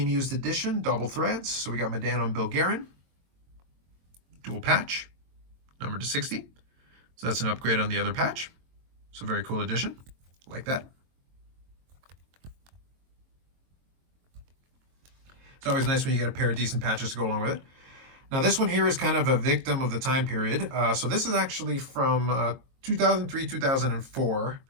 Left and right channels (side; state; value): left; late; 22 ms